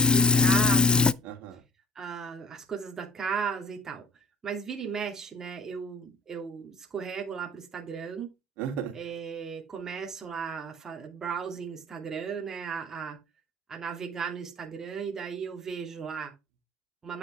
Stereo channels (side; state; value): both; normal; correlation 0.50